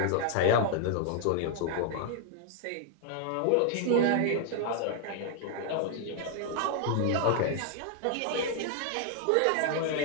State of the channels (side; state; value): both; different; correlation 0.00